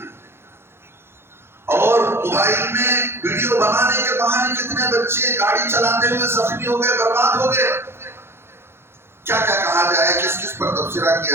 اور موبائل میں ویڈیو بنانے کے بہانے کتنے بچے گاڑی چلاتے ہوئے زخمی ہو گئے، برباد ہو گئے۔ کیا کیا کہا جائے، کس کس پر تبصرہ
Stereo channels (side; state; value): left; late; 0.12 ms